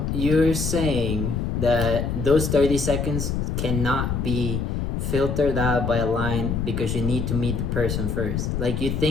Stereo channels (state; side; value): noise; left; rumble, 1 dB below the sound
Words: you're saying that those 30 seconds cannot be filtered out by a line because you need to meet the person first. Like you